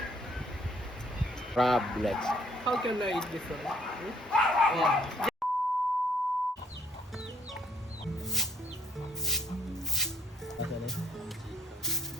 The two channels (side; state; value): both; normal; correlation 0.65